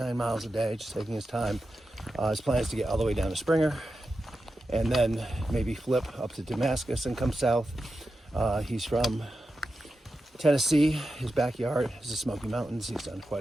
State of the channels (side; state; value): both; normal; correlation 0.90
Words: miles a day, just taking his time. His plan is to get all the way down to Springer, and then maybe flip up to Damascus and come south. He's from Tennessee. His backyard is the Smoky Mountains. He's done